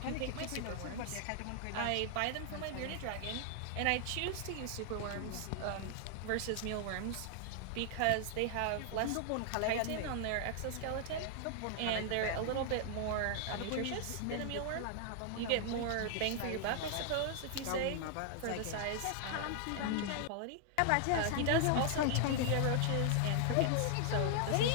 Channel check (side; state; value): both; different; correlation 0.00